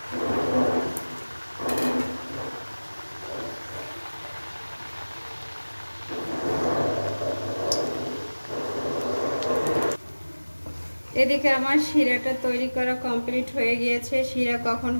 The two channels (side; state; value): both; inverted; correlation -1.00